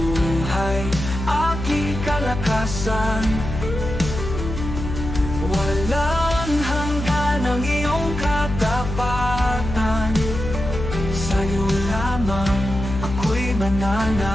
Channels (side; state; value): left; noise; hum, 6 dB below the sound